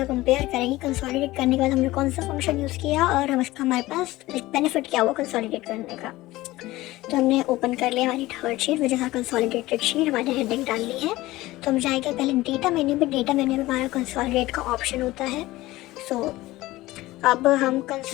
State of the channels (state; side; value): quieter; right; 18.1 dB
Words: कंपेयर करेंगे। कंसोलिडेट करने के बाद हमने कौन सा फंक्शन यूज़ किया और हम इसका हमारे पास बेनिफिट क्या हुआ कंसोलिडेट करने का। तो हमने ओपन कर लिया हमारी थर्ड शीट, वजह से कंसोलिडेटेड शीट, हमारे हेडिंग डाल ली है। तो हम जाएंगे पहले डेटा मेन्यू पे। डेटा मेन्यू में हमारा कंसोलिडेट का ऑप्शन होता है। सो अब हम